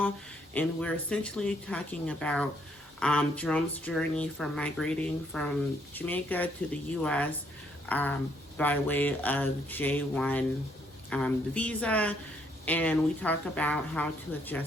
And we're essentially talking about Jerome's journey from migrating from Jamaica to the U.S. By way of J1 visa. And we talk about how to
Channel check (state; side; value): normal; both; correlation 0.70